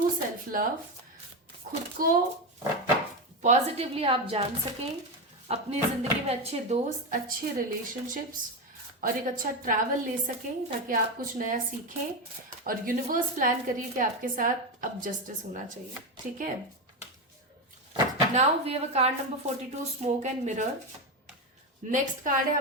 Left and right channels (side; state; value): both; normal; correlation 0.13